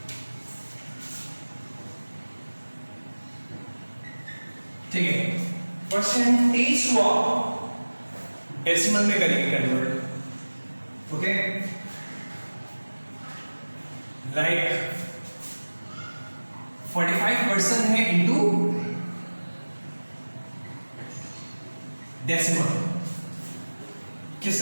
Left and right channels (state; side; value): inverted; both; correlation -1.00